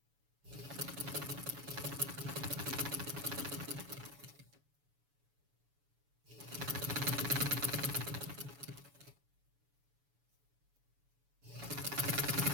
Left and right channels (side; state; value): left; late; 7.1 ms